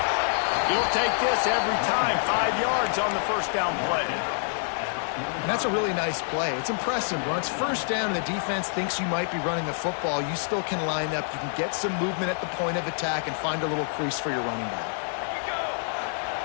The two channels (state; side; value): silent; right; 60 dB below the other